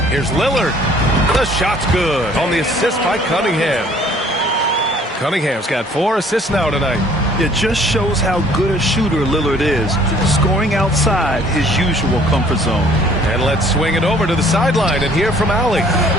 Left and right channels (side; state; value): both; normal; correlation 0.57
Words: Here's Lillard. The shot's good on the assist by Cunningham. Cunningham's got 4 assists now tonight. It just shows how good a shooter Lillard is, scoring outside his usual comfort zone. And let's swing it over to the sideline and hear from Allie.